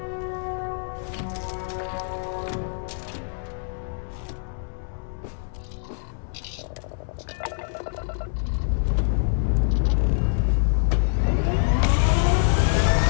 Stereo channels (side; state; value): right; silent; digital silence